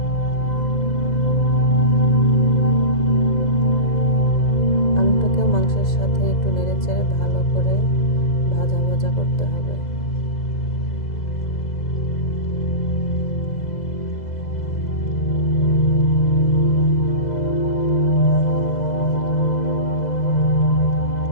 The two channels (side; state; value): right; late; 2.0 ms